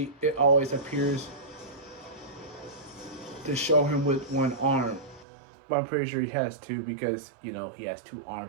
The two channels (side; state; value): left; drops out; at 5.2 s